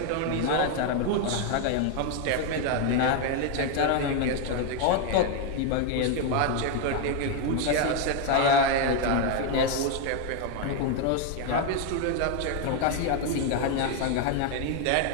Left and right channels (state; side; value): different; both; correlation 0.01